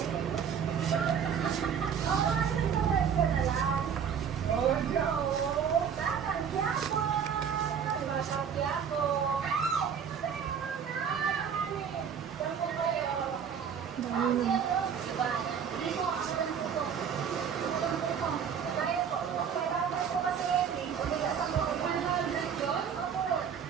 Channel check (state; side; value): quieter; left; 7.5 dB